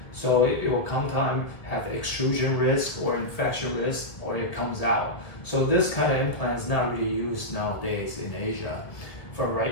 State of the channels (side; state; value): right; late; 1.7 ms